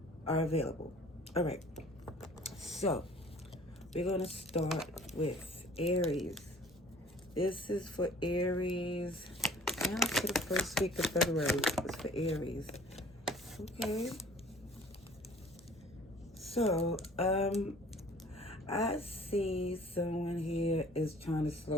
are available. All right. So we're going to start with Aries. This is for Aries. Now for the first week of February. It's for Aries. Okay. So, I see someone here is trying to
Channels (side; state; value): both; normal; correlation 0.51